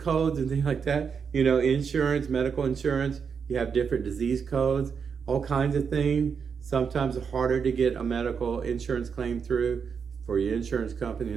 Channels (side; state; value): left; quieter; 6.3 dB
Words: and things like that. Insurance, medical insurance, you have different disease codes, all kinds of things. Sometimes it's harder to get a medical insurance claim through for your insurance company in